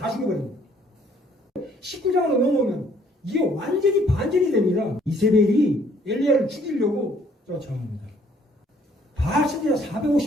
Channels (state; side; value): normal; both; correlation 0.63